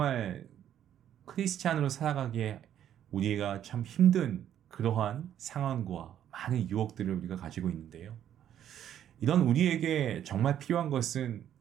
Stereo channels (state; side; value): quieter; left; 10.5 dB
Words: 크리스찬으로 살아가기에 우리가 참 힘든 그러한 상황과 많은 유혹들을 우리가 가지고 있는데요. 이런 우리에게 정말 필요한 것은